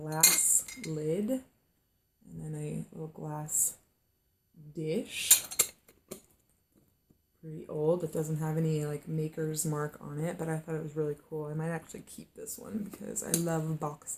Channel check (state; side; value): identical; both; correlation 1.00